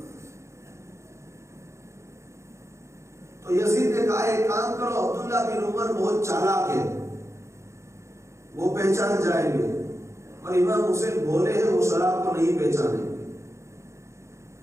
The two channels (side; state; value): left; late; 0.14 ms